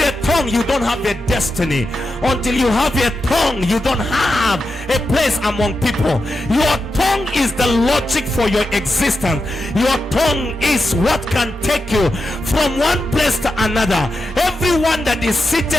tongue, you don't have a destiny. Until you have a tongue, you don't have a place among people. Your tongue is the logic for your existence. Your tongue is what can take you from one place to another. Everyone that is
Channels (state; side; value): normal; both; correlation 0.89